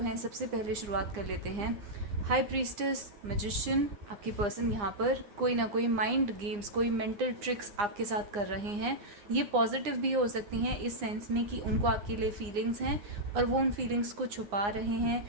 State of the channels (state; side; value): late; left; 9.7 ms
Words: हैं, सबसे पहले शुरुआत कर लेते हैं। High priestess, magician. आपके पर्सन यहाँ पर कोई ना कोई माइंड गेम्स, कोई मेंटल ट्रिक्स आपके साथ कर रहे हैं। ये पॉजिटिव भी हो सकती हैं इस सेंस में कि उनको आपके लिए फीलिंग्स हैं और वो उन फीलिंग्स को छुपा रहे हैं,